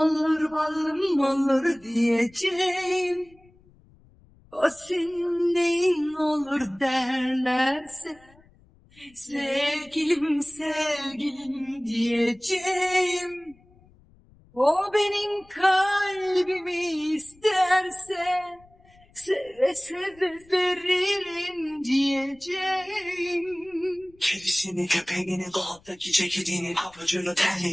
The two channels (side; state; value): left; noise; rumble, 28 dB below the sound